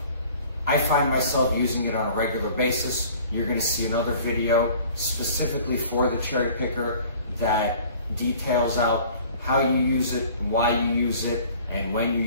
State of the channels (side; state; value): both; inverted; correlation -0.49